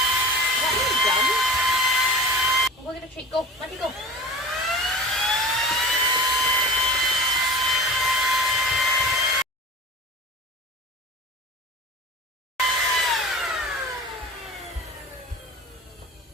Look at the tree. Go. Let it go. I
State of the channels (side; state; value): both; normal; correlation 0.35